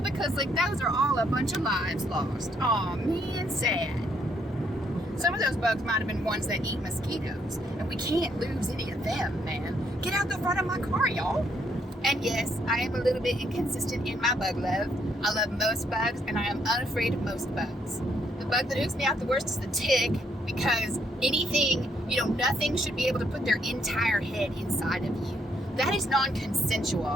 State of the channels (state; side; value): normal; both; correlation 0.72